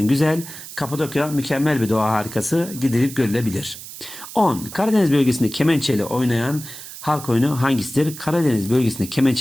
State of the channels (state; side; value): noise; right; hiss, 13 dB below the sound